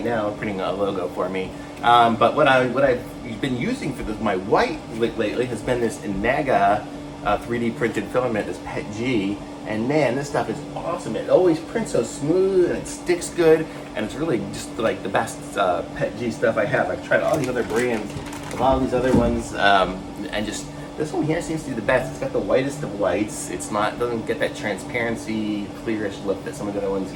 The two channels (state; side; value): identical; both; correlation 1.00